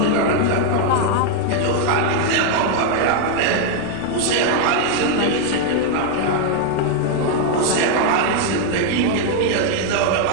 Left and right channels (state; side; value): different; both; correlation 0.00